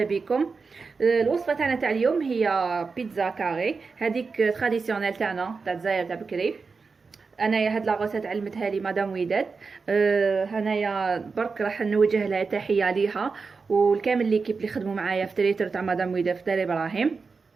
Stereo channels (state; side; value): quieter; left; 4.7 dB